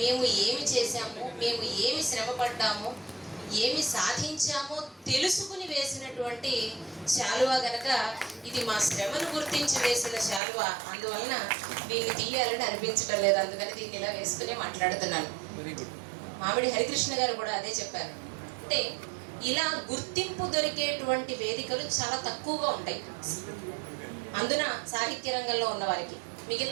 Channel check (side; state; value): left; drops out; at 10.4 s